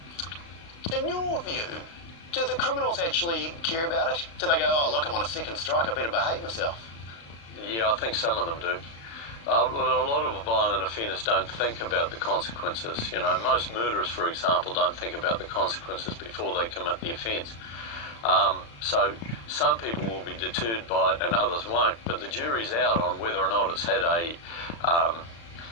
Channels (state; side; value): late; right; 35 ms